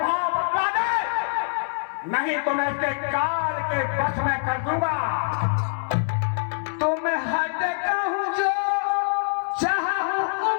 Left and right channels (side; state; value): right; silent; digital silence